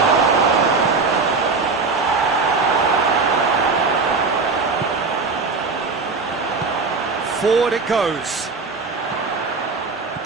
Forward it goes.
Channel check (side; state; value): left; quieter; 4.3 dB